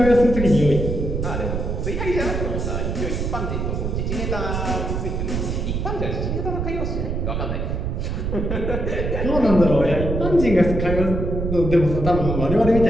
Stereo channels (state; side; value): noise; right; rumble, 2 dB below the sound